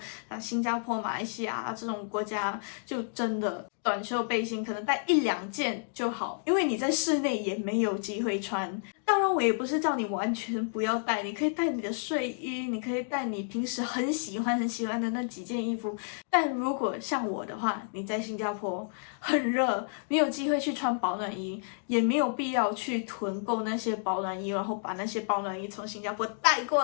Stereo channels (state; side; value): silent; right; digital silence